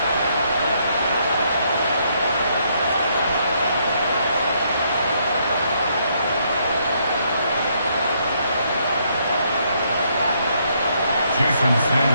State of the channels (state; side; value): inverted; both; correlation -0.72